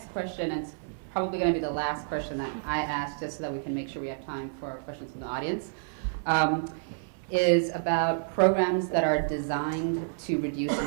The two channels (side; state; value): left; silent; 58 dB below the other